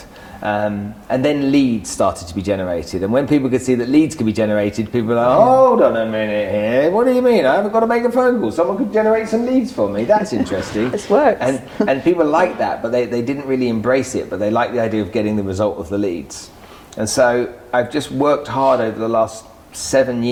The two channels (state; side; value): identical; both; correlation 1.00